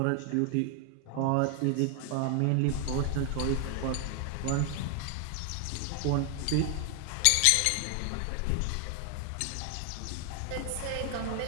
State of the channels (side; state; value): both; different; correlation 0.00